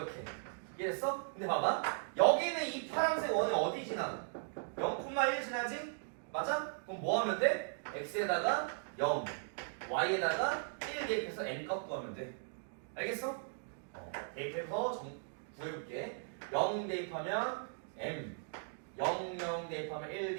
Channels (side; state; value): left; silent; digital silence